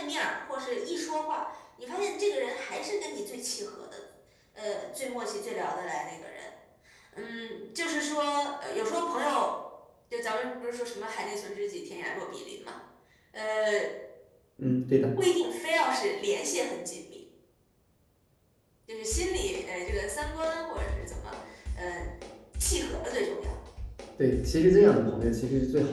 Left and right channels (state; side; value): identical; both; correlation 1.00